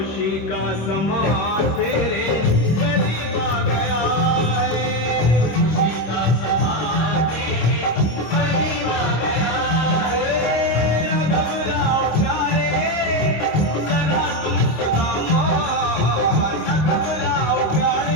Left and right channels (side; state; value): right; late; 26 ms